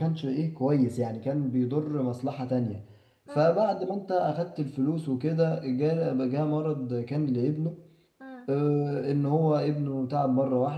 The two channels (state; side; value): identical; both; correlation 1.00